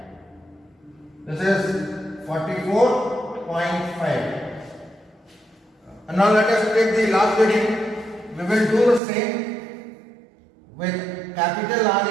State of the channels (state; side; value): drops out; left; at 9.0 s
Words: This is 44.5. And now let us take the last reading. We will do the same with capital R